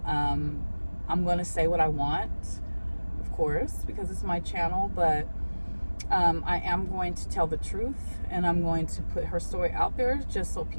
I'm going to say what I want, of course, because it's my channel, but I am going to tell the truth, and I'm going to put her story out there just so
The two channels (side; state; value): both; inverted; correlation -1.00